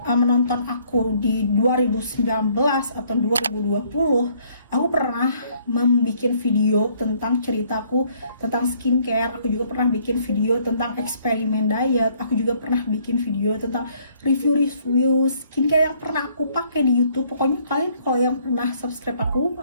aku di 2019 atau 2020, aku pernah membuat video tentang ceritaku tentang skincare. Aku juga pernah bikin video tentang eksperimen diet. Aku juga pernah bikin video tentang review skincare yang pernah aku pakai di YouTube. Pokoknya kalian kalau yang pernah subscribe aku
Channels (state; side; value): inverted; both; correlation -0.64